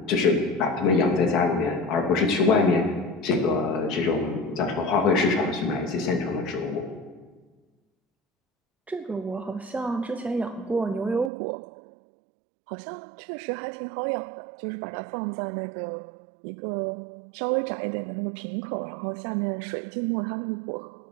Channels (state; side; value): drops out; left; at 11.3 s